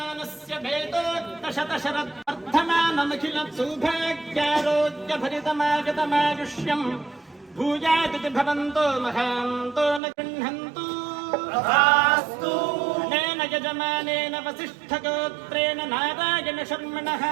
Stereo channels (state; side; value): drops out; left; at 10.0 s